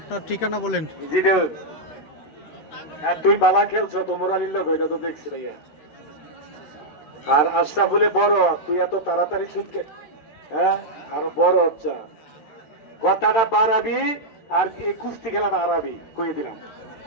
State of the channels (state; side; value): late; right; 13 ms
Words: ঠিকানা বলেন। জিরো আর তুই বালা খেলছো তোমর আলীর লোক এটা তো দেখছি ভাইয়া আর আশরাফুলে বড় তুই এত তাড়াতাড়ি ছুটকে হ্যাঁ আরো বড় হচ্ছে কথাটা বাড়াবি আর এই কুস্তি খেলাটা হারাবি কয়ে দিলাম